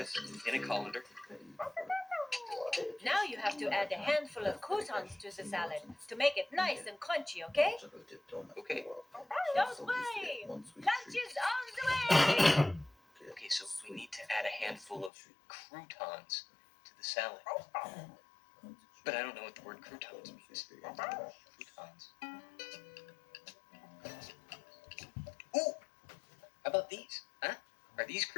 in a colander. Now you have to add a handful of croutons to the salad to make it nice and crunchy, okay? Okay. Don't worry, lunch is on the way! Okay, so we need to add a handful of croutons to the salad. But I don't know what the word croutons means. Croutons. Ooh! How about these? Huh? Are these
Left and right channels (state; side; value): drops out; right; at 15.1 s